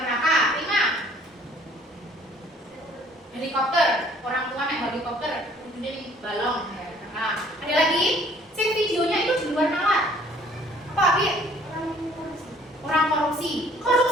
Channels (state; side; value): normal; both; correlation 0.57